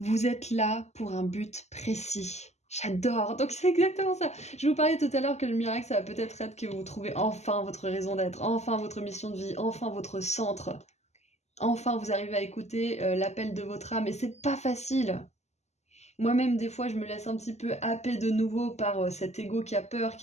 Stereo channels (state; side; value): late; right; 0.33 ms